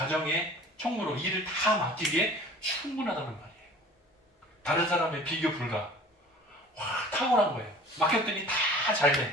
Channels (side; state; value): both; normal; correlation 0.45